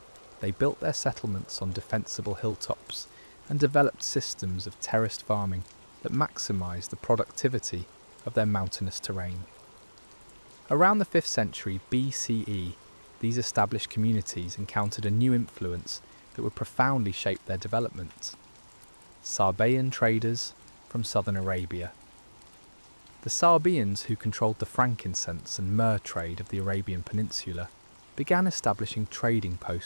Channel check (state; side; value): inverted; both; correlation -1.00